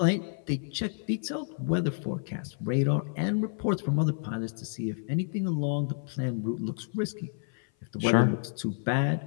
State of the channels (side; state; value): right; silent; 56 dB below the other